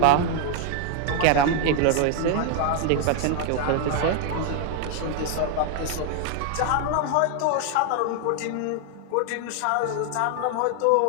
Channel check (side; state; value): both; different; correlation 0.00